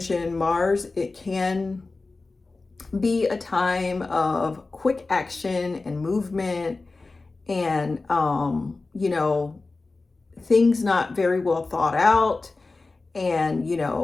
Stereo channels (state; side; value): quieter; right; 3.6 dB